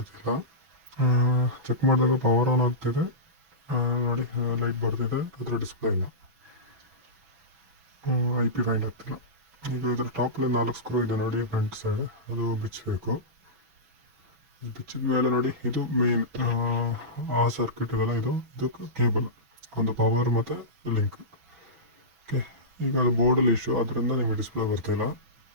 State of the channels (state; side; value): late; left; 6.0 ms